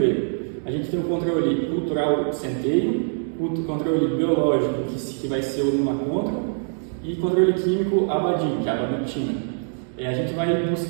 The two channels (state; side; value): silent; left; 63 dB below the other